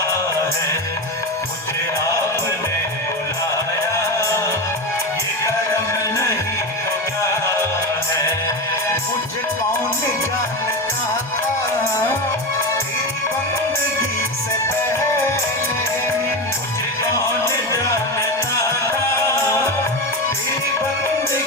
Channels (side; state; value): both; normal; correlation 0.19